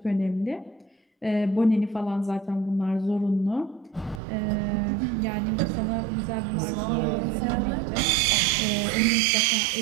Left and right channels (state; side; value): drops out; left; at 4.2 s